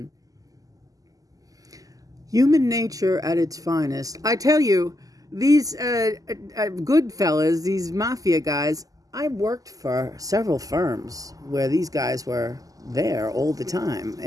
Human nature at its finest. I tell you, these Goodfellas, these mafia guys, I worked for several firms where these guys were there all the time.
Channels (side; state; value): left; late; 0.17 ms